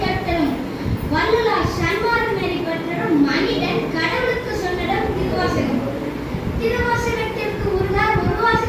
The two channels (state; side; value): identical; both; correlation 1.00